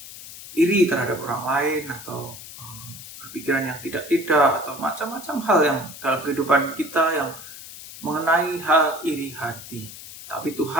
iri terhadap orang lain atau berpikiran yang tidak-tidak atau macam-macam hal yang dalam kehidupan kita yang mengenai hal iri hati. Tapi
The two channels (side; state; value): left; noise; hiss, 14 dB below the sound